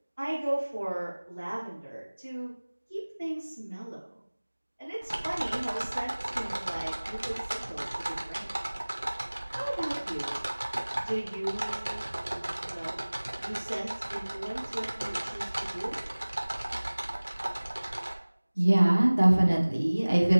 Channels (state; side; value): inverted; both; correlation -1.00